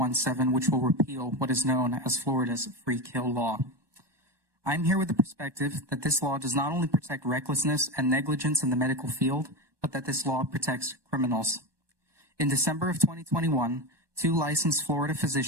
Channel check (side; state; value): left; late; 1.2 ms